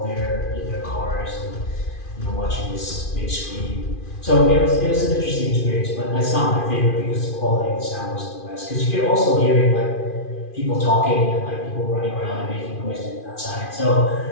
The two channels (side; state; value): right; late; 2.5 ms